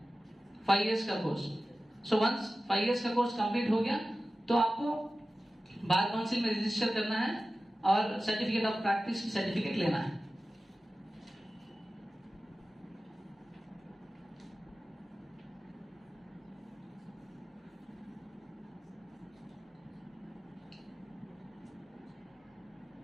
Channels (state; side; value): normal; both; correlation 0.95